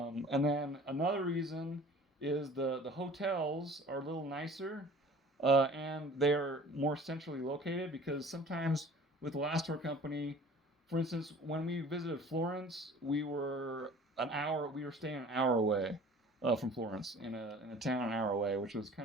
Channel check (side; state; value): both; normal; correlation 0.46